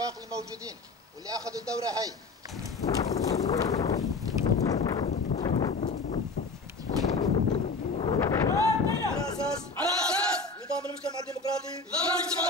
الموجودين واللي اخذوا الدورة هاي على اساس نظام المجتمع الديمقراطي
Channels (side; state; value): right; quieter; 3.8 dB